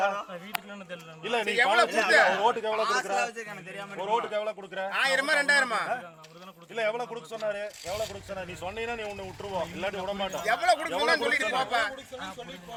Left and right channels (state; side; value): identical; both; correlation 1.00